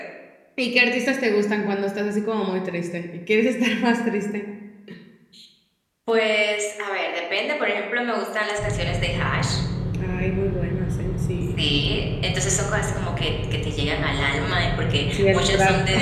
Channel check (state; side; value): identical; both; correlation 1.00